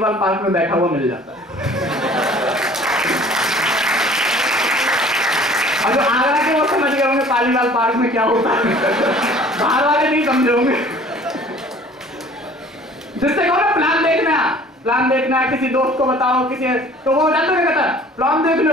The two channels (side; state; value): both; normal; correlation 0.50